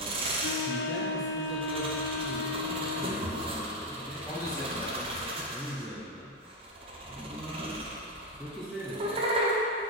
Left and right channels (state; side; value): normal; both; correlation 0.05